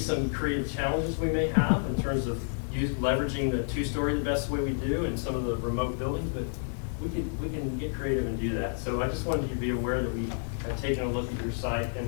creative challenges we may have in terms of leveraging the 2-story the best way we do and some of the remote buildings, but we can get creative and do that. So I just wanted you to be aware that we have taken a look at your site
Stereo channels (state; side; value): silent; right; digital silence